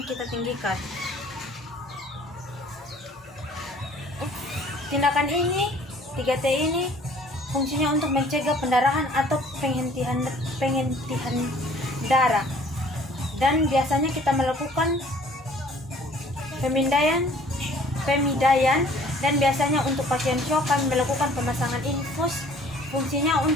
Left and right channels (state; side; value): normal; both; correlation 0.54